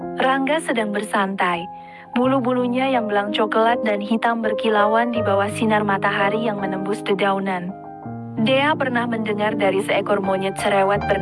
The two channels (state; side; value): identical; both; correlation 1.00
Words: Rangga sedang bersantai, bulu-bulunya yang belang coklat dan hitam berkilauan di bawah sinar matahari yang menembus dedaunan. Dea pernah mendengar dari seekor monyet cerewet